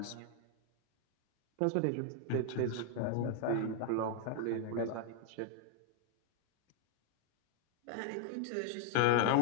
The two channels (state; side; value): different; both; correlation 0.00